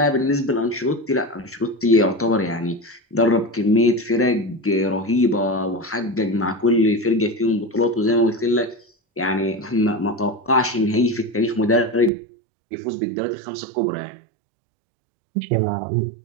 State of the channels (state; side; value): drops out; left; at 12.1 s